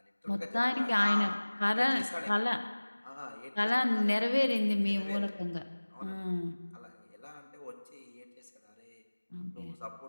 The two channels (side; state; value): both; inverted; correlation -1.00